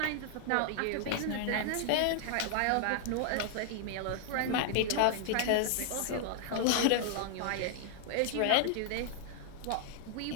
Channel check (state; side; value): different; both; correlation 0.00